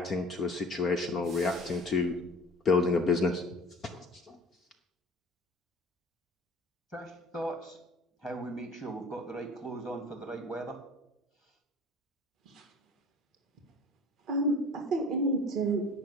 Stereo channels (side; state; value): both; normal; correlation 0.44